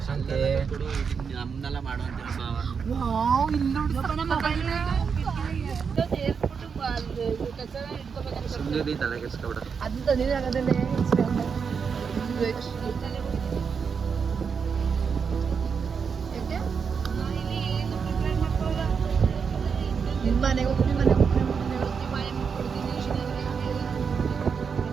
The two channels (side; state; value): left; quieter; 6.1 dB